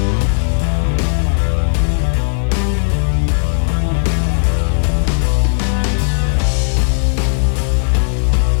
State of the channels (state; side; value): silent; right; digital silence